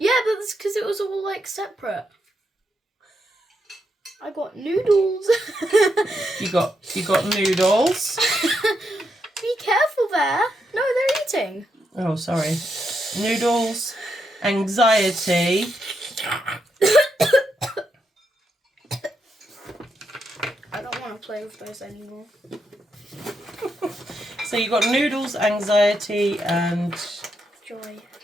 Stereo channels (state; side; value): normal; both; correlation 0.81